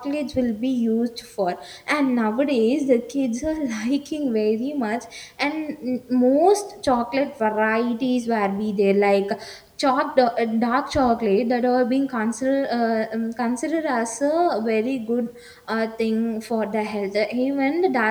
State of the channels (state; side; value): identical; both; correlation 1.00